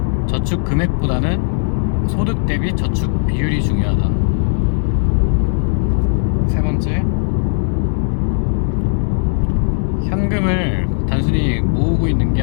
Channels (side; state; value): right; silent; digital silence